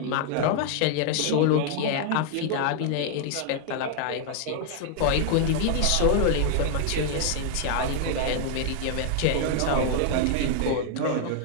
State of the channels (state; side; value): different; both; correlation 0.00